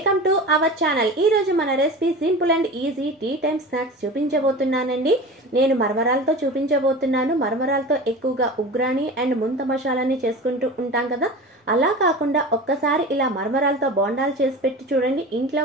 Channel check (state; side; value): normal; both; correlation 0.33